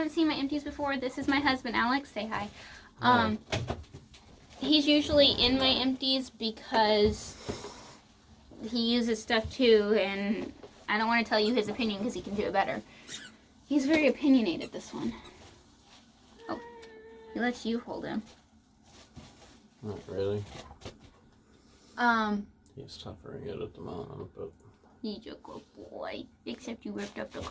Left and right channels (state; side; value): identical; both; correlation 1.00